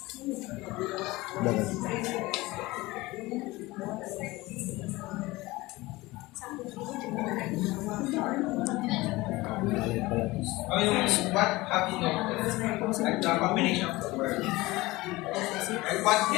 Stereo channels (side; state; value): right; quieter; 20.4 dB